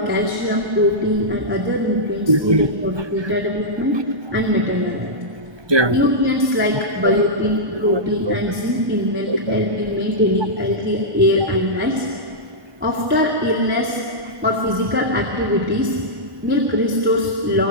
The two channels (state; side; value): late; left; 1.1 ms